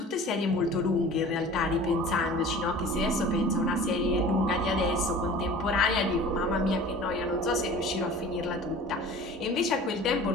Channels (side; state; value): both; normal; correlation 0.42